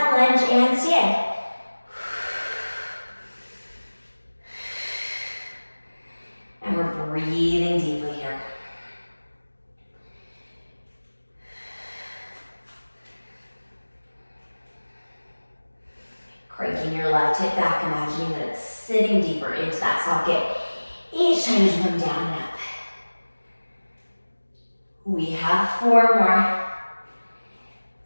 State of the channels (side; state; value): both; inverted; correlation -1.00